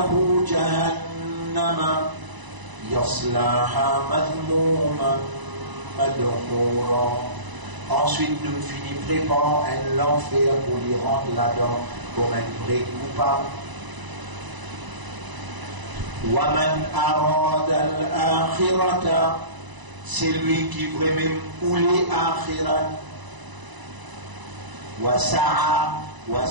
جهنم يصلاها مذموما مدحورا. Ensuite nous finissons préparant un l'enfer pour lui rendre là-dedans comme un vrai coupable. وَمَنْ أَرَادَ الْآخِرَةَ, c'est lui qui veut même ouler akhirat. وَسَعَى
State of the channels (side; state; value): left; late; 1.0 ms